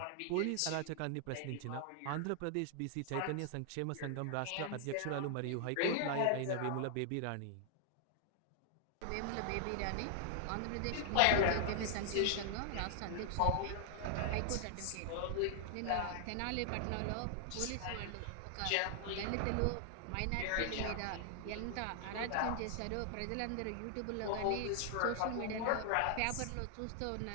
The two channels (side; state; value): both; different; correlation 0.00